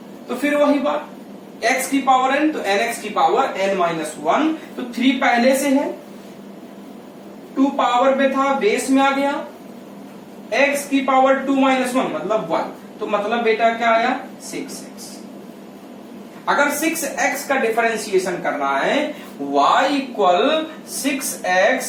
तो फिर वही बात x की पावर n, तो nx की पावर n माइनस 1, तो 3 पहले से है, 2 पावर में था बेस में आ गया, x की पावर 2 माइनस 1 मतलब 1, तो मतलब बेटा क्या आया 6x। अगर 6x का डिफरेंशिएशन करना है y इक्वल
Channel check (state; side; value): identical; both; correlation 1.00